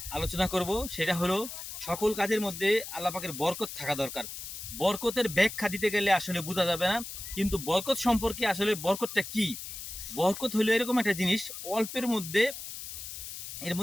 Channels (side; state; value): left; noise; hiss, 9 dB below the sound